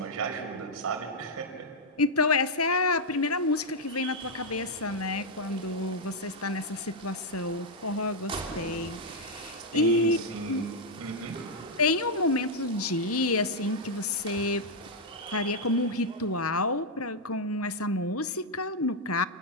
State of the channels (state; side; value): normal; both; correlation -0.02